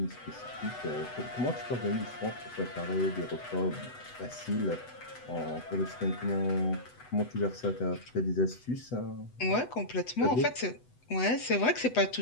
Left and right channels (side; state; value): right; late; 8.0 ms